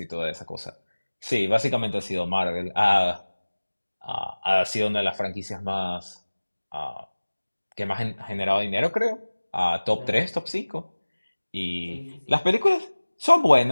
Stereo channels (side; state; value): both; inverted; correlation -1.00